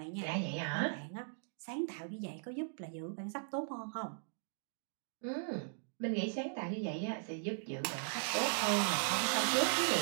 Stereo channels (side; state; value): left; silent; digital silence